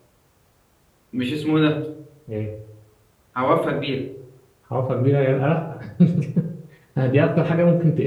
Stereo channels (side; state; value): both; identical; correlation 1.00